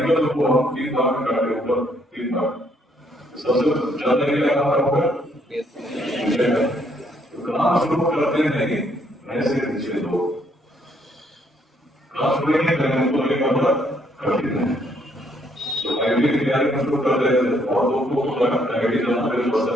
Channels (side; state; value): both; normal; correlation 0.69